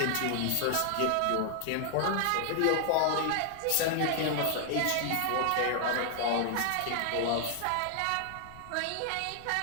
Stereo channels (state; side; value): different; both; correlation 0.00